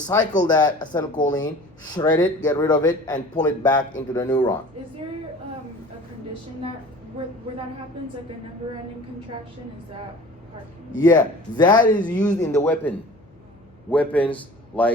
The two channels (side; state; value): left; noise; hum, 30 dB below the sound